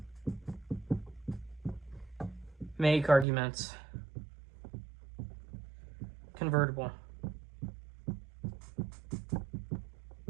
make arguments convertible.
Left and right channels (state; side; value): drops out; left; at 3.2 s